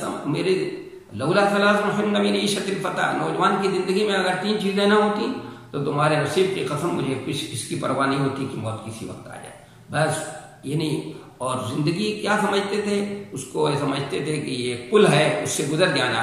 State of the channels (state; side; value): identical; both; correlation 1.00